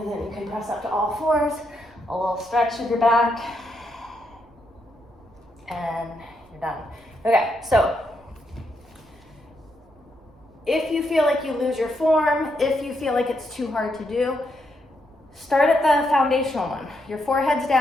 then you can press up to all fours, a little stretch of your back, and you're done. Okay, so if you feel like you lose your form, if you feel like it's too hard to do, start at the foundational one. Your forehead's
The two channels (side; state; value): right; noise; rumble, 29 dB below the sound